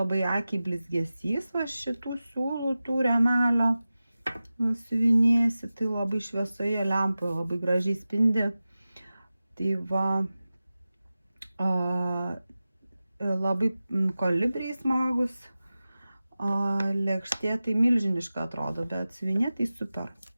akiai blizgesys, va šitų siūlų tų rėmelio siuvinėsi, tai labai šviesoje lempoje labai gražiai spindi. Tai va, labai kolibriai smagus, lėkštė tai milžiniška atrodo, bet siuvinė tai super.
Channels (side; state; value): both; inverted; correlation -0.95